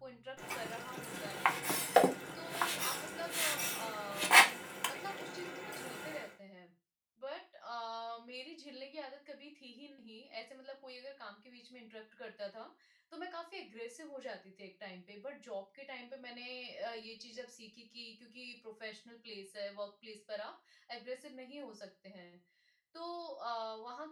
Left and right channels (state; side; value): identical; both; correlation 1.00